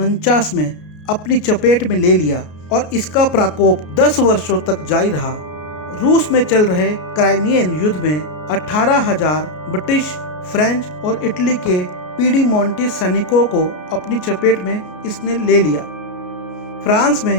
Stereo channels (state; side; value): late; right; 33 ms